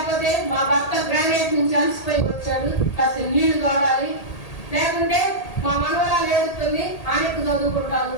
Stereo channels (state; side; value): late; right; 1.8 ms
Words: మా భర్త గ్రానైట్ నుంచి అలసిపోయి వచ్చాడు, కాస్త నీళ్లు తోడాలి, లేకుంటే మా మనవరాలు ఏడుస్తుంది ఆనెక్కు